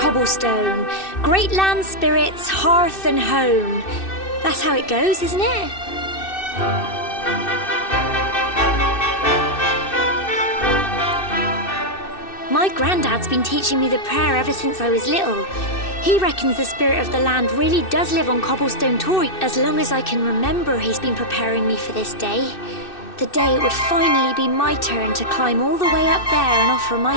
great land spirits, hearth and home. That's how it goes, isn't it? My granddad's been teaching me the prayer ever since I was little. He reckons the spirit of the land really does live on cobblestone Toy. As long as I can remember, he's been preparing me for this day. The day it would finally be my turn to climb all the way up there and offer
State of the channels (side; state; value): right; late; 2.6 ms